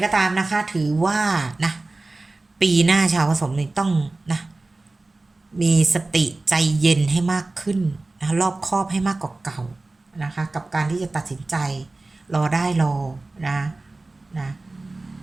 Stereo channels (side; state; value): left; quieter; 3.2 dB